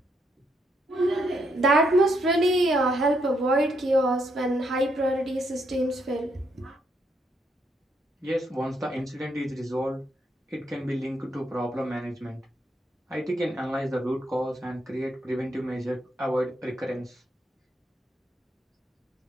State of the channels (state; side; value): normal; both; correlation 0.76